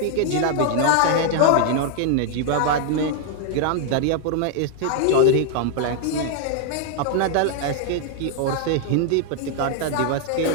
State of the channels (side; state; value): both; different; correlation 0.00